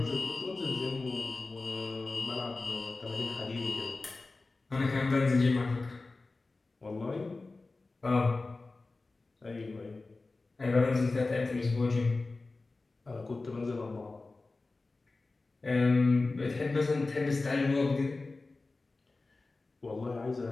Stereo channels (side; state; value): right; quieter; 3.5 dB